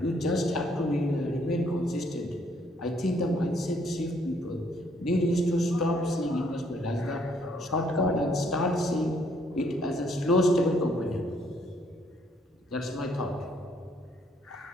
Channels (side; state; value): both; normal; correlation 0.68